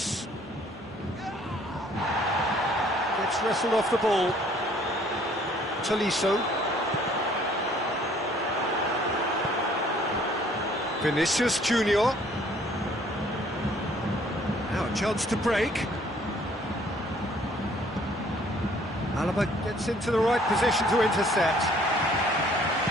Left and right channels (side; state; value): right; noise; hum, 29 dB below the sound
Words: It's wrestled off the ball. Tolisso. Vinicius Junior. Now a chance to break. Alaba gets into the right position to intercept.